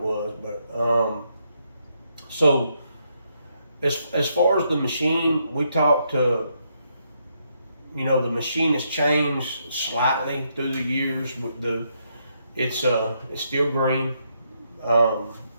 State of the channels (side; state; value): both; inverted; correlation -0.77